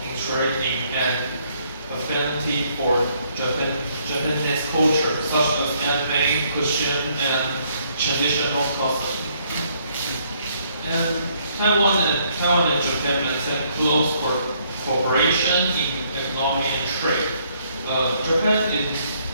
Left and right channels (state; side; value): inverted; both; correlation -0.68